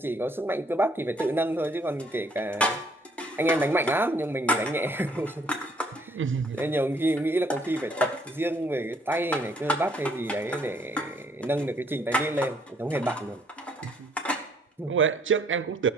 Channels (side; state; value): both; normal; correlation 0.65